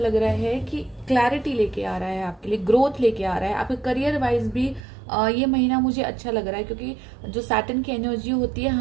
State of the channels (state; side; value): drops out; left; at 4.8 s